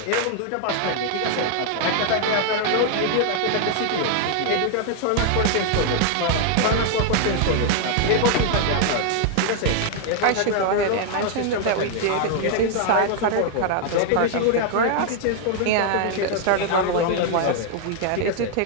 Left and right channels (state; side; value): different; both; correlation 0.00